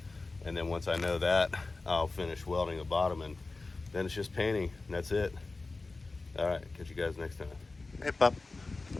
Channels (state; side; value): quieter; right; 3.5 dB